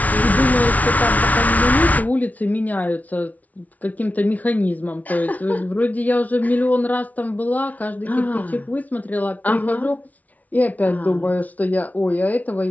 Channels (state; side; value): late; right; 0.072 ms